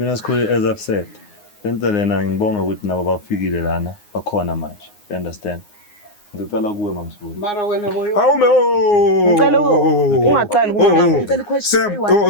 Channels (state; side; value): late; right; 9.6 ms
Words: sikhulu as I've said. Lento lena ngibonga ukuthi nabo bafikile lana bakhona manje. You understand? Ngicela kuwe mamsibuni. mara wena boyo awume Ngicela ungaqali Ngicela Sam